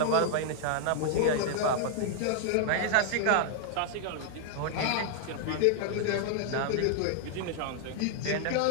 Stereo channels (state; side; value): different; both; correlation 0.00